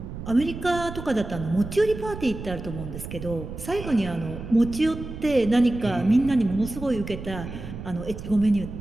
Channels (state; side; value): noise; right; rumble, 10 dB below the sound